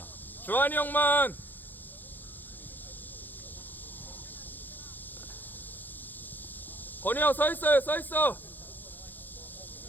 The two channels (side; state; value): right; late; 0.087 ms